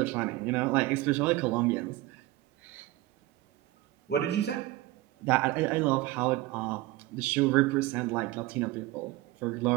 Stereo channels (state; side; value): quieter; left; 17.5 dB